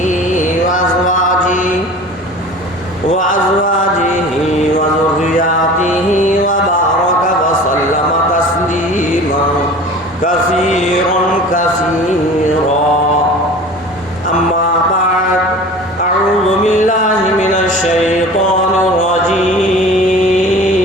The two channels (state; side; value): normal; both; correlation 0.40